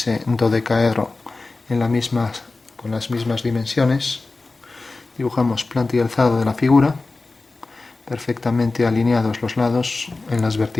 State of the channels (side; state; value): right; quieter; 3.5 dB